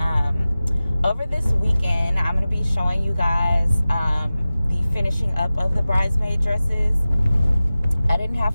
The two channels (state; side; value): inverted; both; correlation -0.96